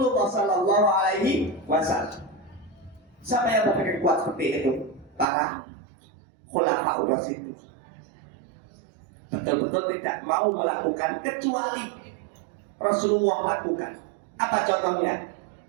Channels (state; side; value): drops out; left; at 5.2 s